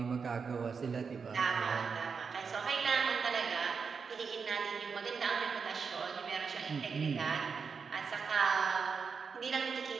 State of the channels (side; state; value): left; quieter; 5.6 dB